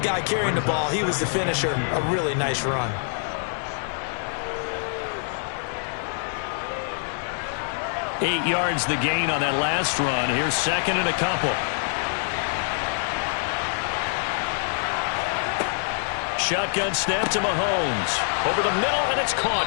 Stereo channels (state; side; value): silent; right; 62 dB below the other